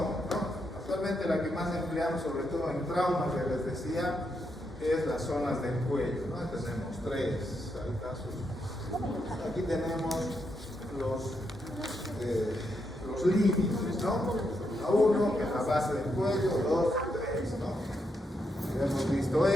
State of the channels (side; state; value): both; normal; correlation 0.81